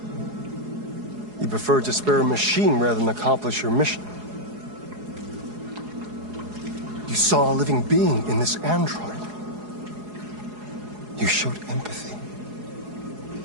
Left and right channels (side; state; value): left; late; 4.8 ms